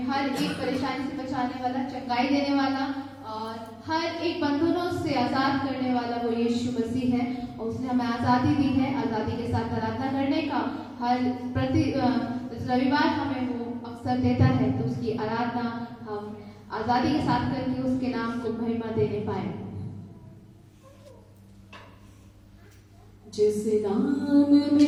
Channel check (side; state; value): both; identical; correlation 1.00